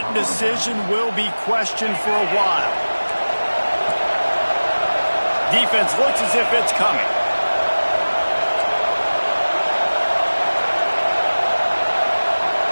decision will be questioned for a while. Defense looks as if it's coming.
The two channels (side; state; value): both; inverted; correlation -1.00